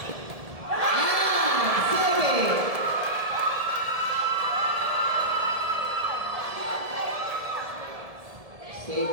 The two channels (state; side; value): late; left; 1.7 ms